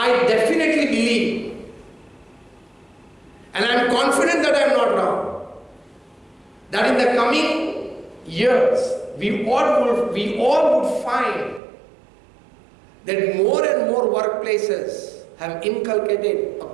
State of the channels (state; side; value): drops out; left; at 11.6 s